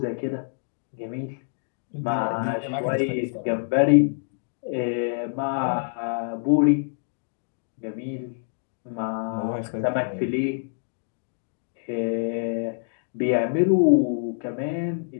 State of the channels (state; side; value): silent; right; digital silence